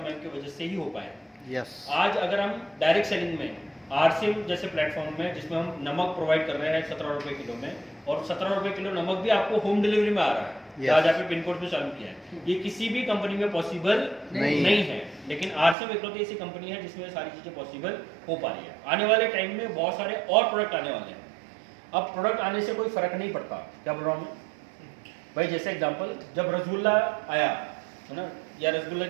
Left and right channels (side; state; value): left; drops out; at 15.8 s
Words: की वजह से ही हो पाए। आज अगर हम डायरेक्ट सेलिंग में आरसीएम जैसे प्लेटफॉर्म में, जिसमें हम नमक प्रोवाइड कर रहे हैं 17 रुपए किलो में, और 17 रुपए किलो नमक भी आपको होम डिलीवरी में आ रहा है, आज आपने पिन कोड पे चालू किया है, ये किसी भी कंपनी में पॉसिबल नहीं है। लेकिन आरसीएम इकलौती ऐसी कंपनी है जिसमें सारी चीजें पॉसिबल हो पा रही है। आने वाले टाइम में बहुत सारे और प्रोडक्ट आने वाले हैं। अब प्रोडक्ट आने से कोई फर्क नहीं पड़ता, क्या बोल रहा हूँ मैं भाई? जैसे एग्जांपल, जब रसगुल्ला आया है ना, या रसगुल्ला